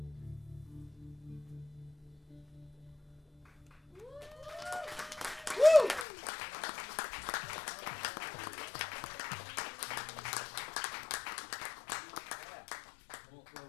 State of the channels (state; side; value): drops out; right; at 6.1 s